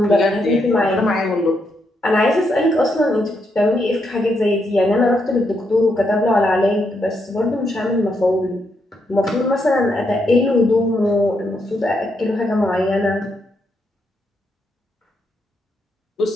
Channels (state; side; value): normal; both; correlation 0.79